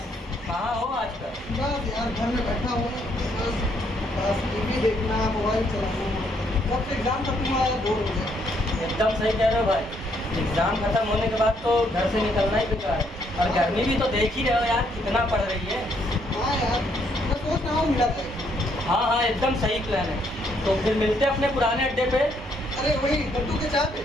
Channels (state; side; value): normal; both; correlation 0.71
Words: कहाँ हो आजकल? बस यार घर में बैठा हूँ, बस टीवी देखना, मोबाइल चलाना। जब से एग्जाम खत्म हुआ है बोर हो गया। एकदम सही कह रहे हो भाई। एग्जाम खत्म होने के बाद तो घर से निकलना ही बेकार है। और गर्मी भी तो देख ही रहे हो यार कितना पड़ रही है। हाँ यार, मैं सोच रहा हूँ मिला जाए। हाँ हाँ एकदम सही प्लान है। तो फिर मिलते अपने पुराने अड्डे पे। अरे वही लड्डू के चाय पे।